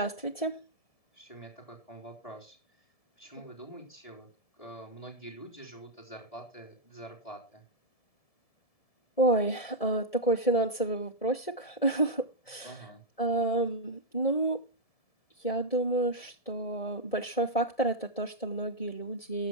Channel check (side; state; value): right; late; 1.7 ms